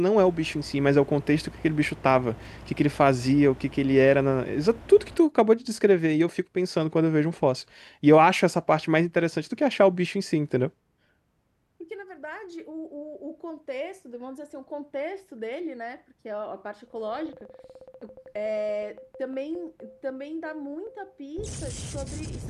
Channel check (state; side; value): identical; both; correlation 1.00